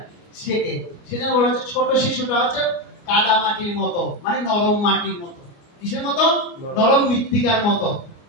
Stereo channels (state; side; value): late; right; 29 ms